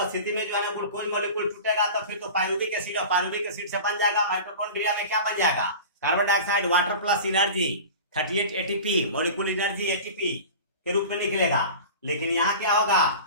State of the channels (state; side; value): inverted; both; correlation -0.35